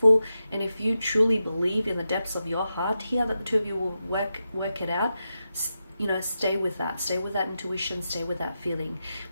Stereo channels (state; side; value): inverted; both; correlation -0.89